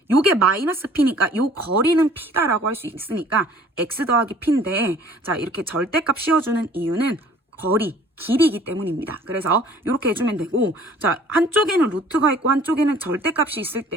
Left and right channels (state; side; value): normal; both; correlation 0.53